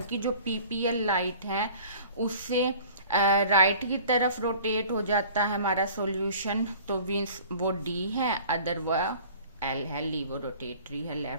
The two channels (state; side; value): inverted; both; correlation -0.47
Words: कि जो PPL लाइट है उससे राइट की तरफ रोटेट हो जाता है हमारा सॉल्यूशन, तो मीन्स वो D है, अदर वह L है, लीवो रोटेटरी है